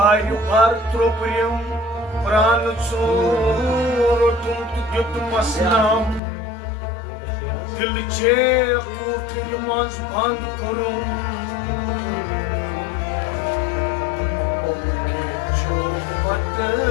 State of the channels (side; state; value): right; drops out; at 6.2 s